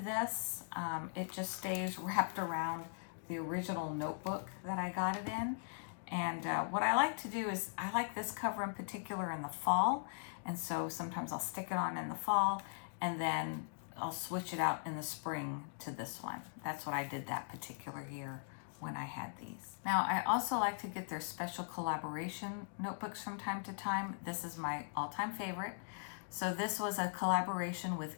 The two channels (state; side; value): silent; right; digital silence